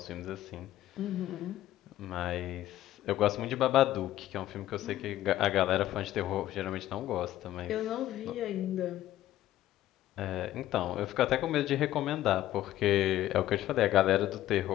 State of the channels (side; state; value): right; quieter; 13.8 dB